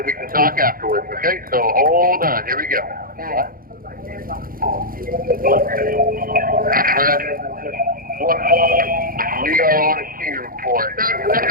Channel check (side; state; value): left; late; 0.42 ms